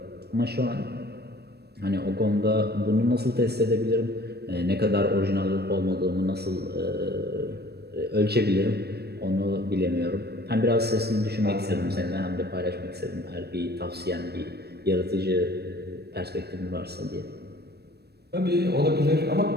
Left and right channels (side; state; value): left; late; 0.47 ms